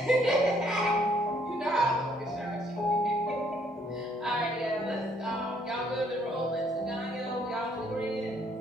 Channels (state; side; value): normal; both; correlation 0.67